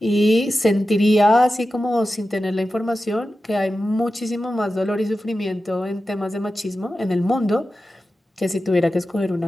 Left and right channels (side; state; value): both; normal; correlation 0.93